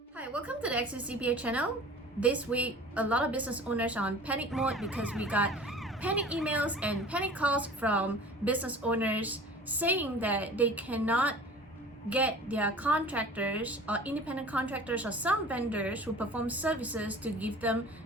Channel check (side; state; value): both; normal; correlation 0.42